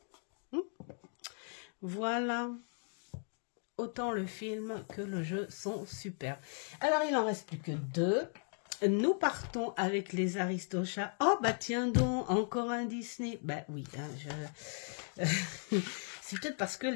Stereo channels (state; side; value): silent; right; 53 dB below the other